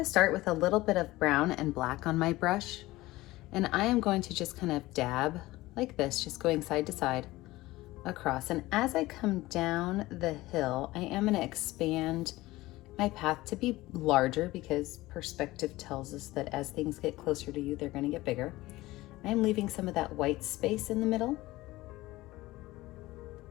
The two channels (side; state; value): right; quieter; 18.5 dB